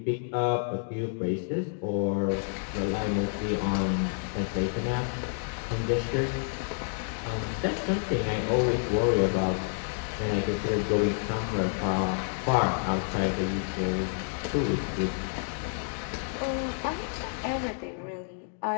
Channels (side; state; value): right; silent; 58 dB below the other